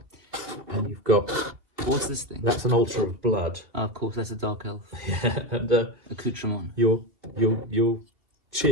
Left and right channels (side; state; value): left; late; 2.5 ms